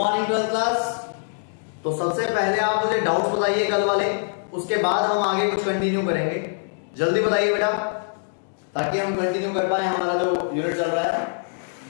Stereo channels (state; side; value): silent; right; digital silence